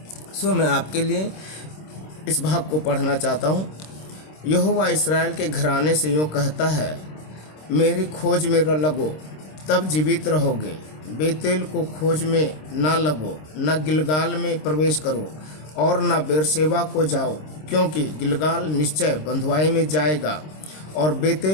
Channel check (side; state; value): right; late; 26 ms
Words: सो मैं आपके लिए इस भाग को पढ़ना चाहता हूँ। यहोवा इस्राएल के घराने से यूँ कहता है, मेरी खोज में लगो तब जीवित रहोगे। बेतेल को खोज में ना लगो, न गिलगाल में प्रवेश करो और न बेरशेबा को जाओ, क्योंकि गिलगाल निश्चय बंधुआई में जाएगा और